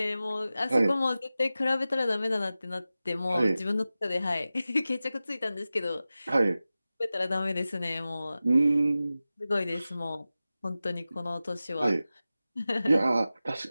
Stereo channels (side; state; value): both; inverted; correlation -0.95